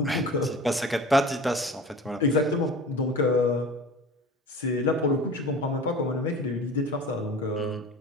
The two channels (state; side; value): normal; both; correlation 0.38